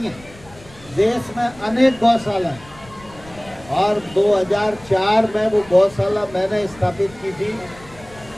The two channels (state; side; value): noise; left; rumble, 22 dB below the sound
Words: है, देश में अनेक गौशाला है। और 2004 में वो गौशाला मैंने स्थापित की थी।